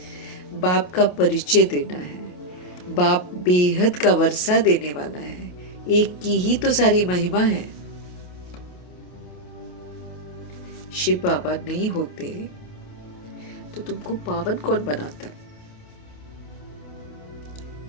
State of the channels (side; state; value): right; late; 28 ms